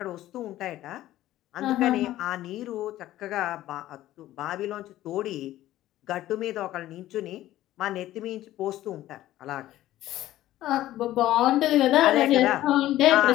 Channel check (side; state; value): right; quieter; 14.5 dB